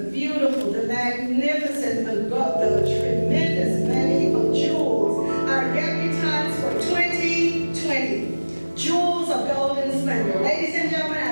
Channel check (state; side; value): inverted; both; correlation -1.00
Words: beautiful, the magnificent, the tremendous many of jewels, our debutantes for 2020. Jewels of golden splendor. Ladies and gentlemen,